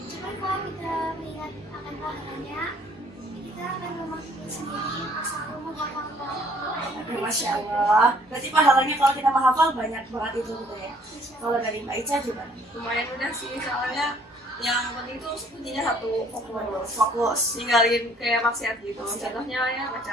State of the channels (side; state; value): both; normal; correlation 0.60